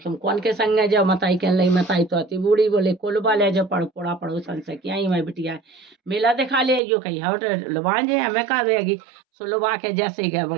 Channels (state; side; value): drops out; left; at 6.8 s